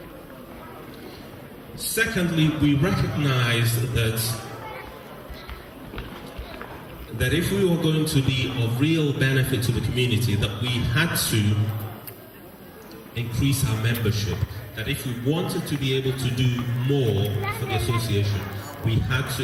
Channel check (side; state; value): both; identical; correlation 1.00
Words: Secondly, we recognized that if we were going to be of real benefit to the community, that we had to increase our membership. That if we wanted to be able to do more for the association, we had to